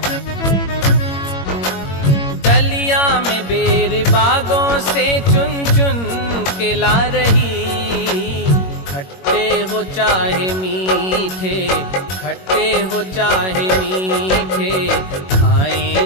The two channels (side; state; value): right; late; 21 ms